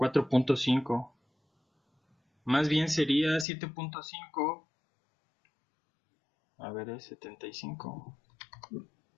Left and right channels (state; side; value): drops out; right; at 3.5 s